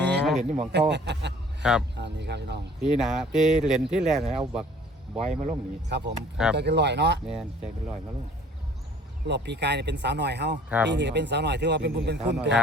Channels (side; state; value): both; normal; correlation 0.52